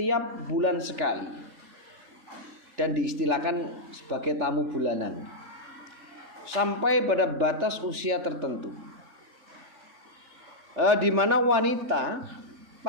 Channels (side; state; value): left; late; 3.4 ms